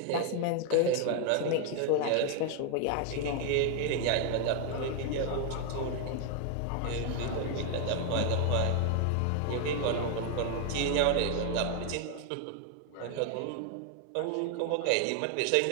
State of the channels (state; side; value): different; both; correlation 0.00